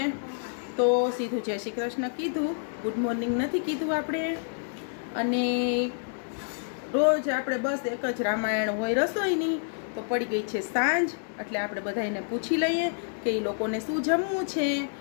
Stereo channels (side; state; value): right; silent; digital silence